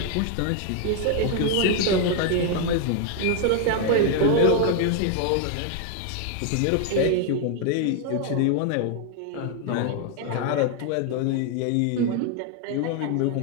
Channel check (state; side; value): different; both; correlation 0.00